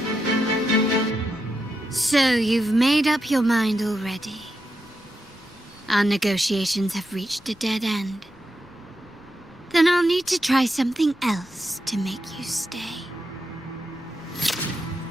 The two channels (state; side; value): noise; left; rumble, 27 dB below the sound